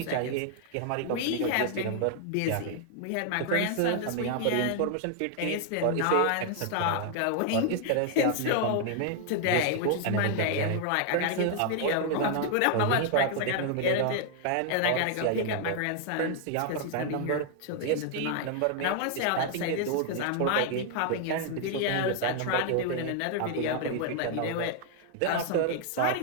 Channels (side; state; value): both; different; correlation 0.00